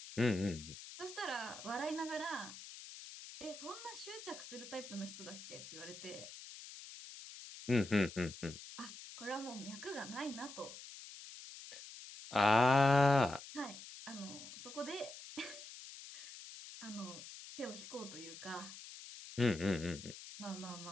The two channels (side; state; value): left; noise; hiss, 13 dB below the sound